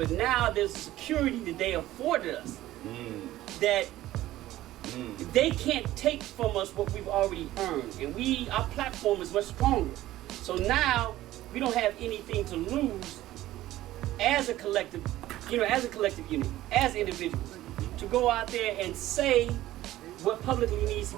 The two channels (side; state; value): left; quieter; 15.1 dB